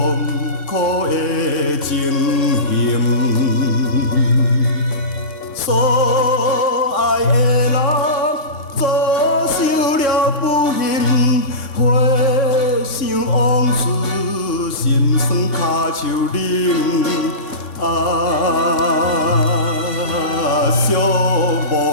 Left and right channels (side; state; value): right; late; 3.6 ms